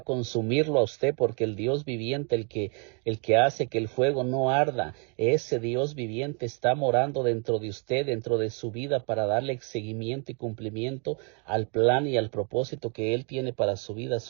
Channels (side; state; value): left; quieter; 36.2 dB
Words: consumirlo a usted, porque el Dios viviente, el que hace que el fuego no arda, ese Dios viviente está morando dentro de usted, dentro de su vida, para darle seguimiento y cumplimiento al plan y al propósito que Él tiene para su vida.